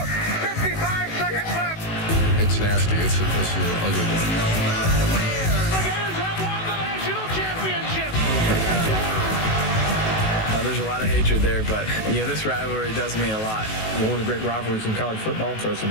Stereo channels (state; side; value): late; right; 18 ms